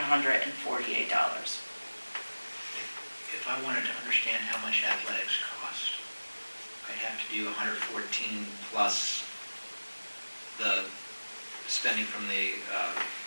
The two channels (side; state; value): both; inverted; correlation -1.00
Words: If I wanted to understand how much athletics cost, I'd have to do 114 plus the spending from the